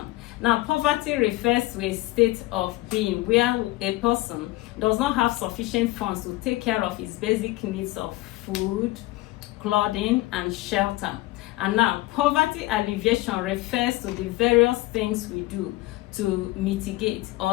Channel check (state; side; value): quieter; right; 19.1 dB